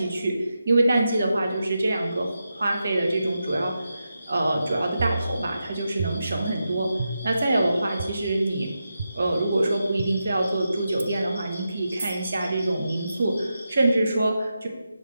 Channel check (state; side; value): inverted; both; correlation -0.88